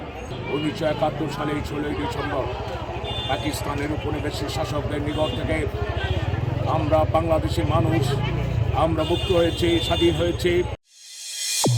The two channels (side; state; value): both; identical; correlation 1.00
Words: 1971 সালের 16ই ডিসেম্বর পাকিস্তানের উপনিবেশিক শাসকদের নিকট থেকে আমরা বাংলাদেশি মানুষ আমরা মুক্ত হয়েছি, স্বাধীন হয়েছি।